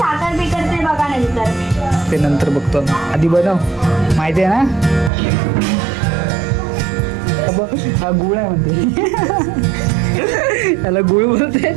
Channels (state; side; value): drops out; left; at 5.1 s